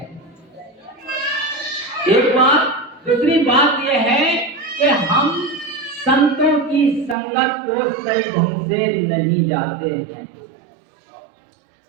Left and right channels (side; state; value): left; drops out; at 7.2 s